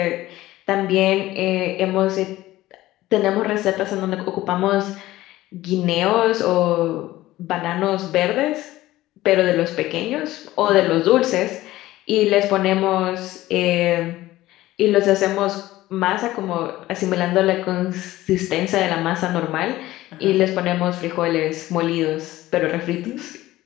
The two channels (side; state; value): right; quieter; 16.4 dB